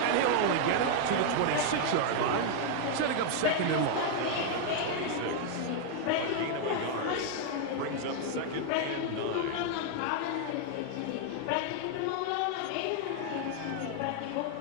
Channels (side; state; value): both; different; correlation 0.00